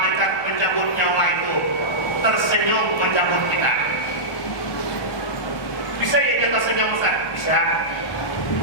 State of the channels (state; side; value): late; right; 1.2 ms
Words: pencabut nyawa itu tersenyum mencabut kita. Bisa ya kita senyum Ustaz? Bisa.